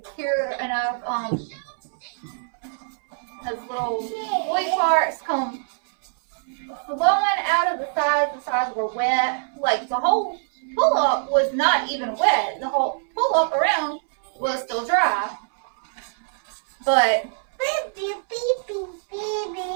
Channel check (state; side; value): silent; left; 62 dB below the other